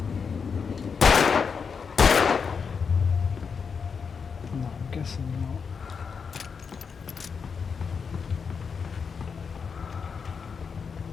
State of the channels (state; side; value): quieter; right; 5.9 dB